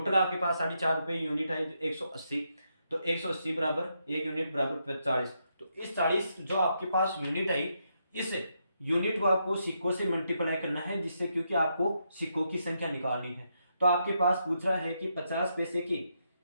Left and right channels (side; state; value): both; inverted; correlation -0.80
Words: आपके पास 4.5 रुपए यूनिट है 180, तो 180 बराबर 1 यूनिट बराबर 40। तो इस 40 जो आपके पास यूनिट आई, इस यूनिट को आपको सिक्कों से मल्टीप्लाई करना है, जिससे क्योंकि आपको सिक्कों की संख्या निकालनी है। तो आपके पास पूछ रहा है कि 50